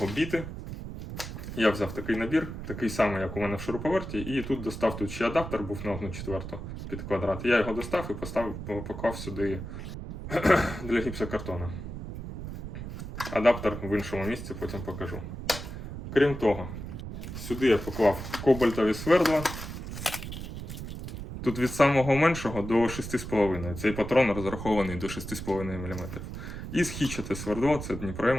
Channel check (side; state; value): right; noise; rumble, 8 dB below the sound